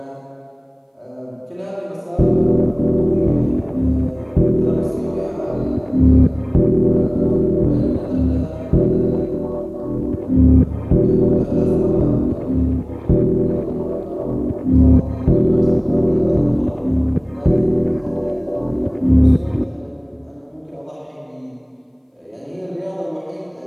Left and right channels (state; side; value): identical; both; correlation 1.00